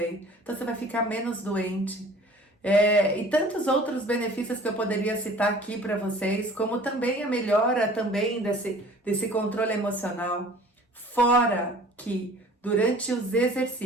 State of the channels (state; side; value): normal; both; correlation 0.48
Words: Então você vai ficar menos doente. E tantos outros benefícios que eu poderia citar aqui para vocês, como também a melhora também desse controle emocional. Fora que durante os